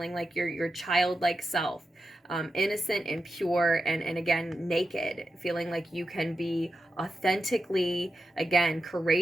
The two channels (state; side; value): normal; both; correlation 0.90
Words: like your childlike self, innocent and pure, and again, naked, feeling like you can be authentically, again,